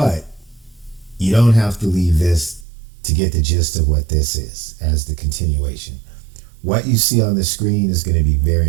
you don't have to leave this to get the gist of what this is as the continuation. What you see on the screen is going to be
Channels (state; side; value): drops out; left; at 2.7 s